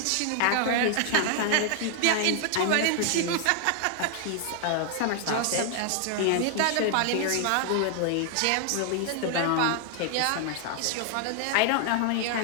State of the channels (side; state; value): both; different; correlation 0.00